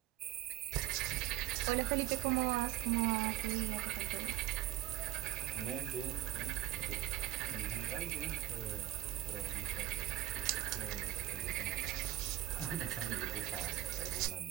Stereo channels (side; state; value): left; quieter; 14.4 dB